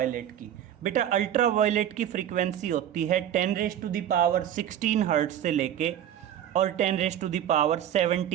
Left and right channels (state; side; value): quieter; left; 10.6 dB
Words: की। बेटा अल्ट्रावायलेट की फ्रीक्वेंसी होती है 10⁻16 हर्ट्ज से लेके और